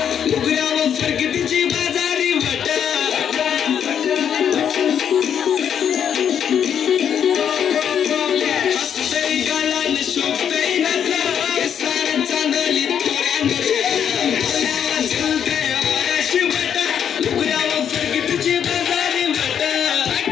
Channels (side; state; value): right; quieter; 8.5 dB